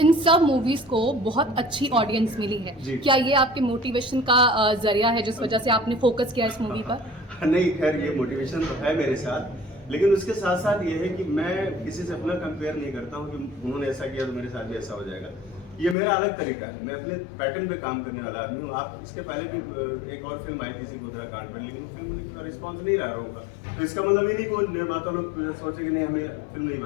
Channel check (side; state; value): right; drops out; at 16.0 s